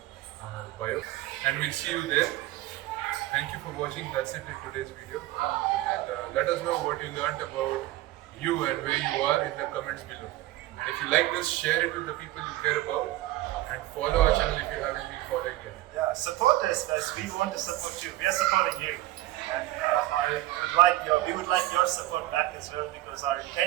on bio. And we'll see you there. Thank you for watching. That's it in today's video. And let us know what you learned about you and where you are in the comments below. And if you like this, share it with the people you care about. And follow our channel if you haven't been following yet. Yeah, support us as we want to support you. We are supporting you. And we would like your support back as well, because our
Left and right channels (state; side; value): quieter; left; 16.2 dB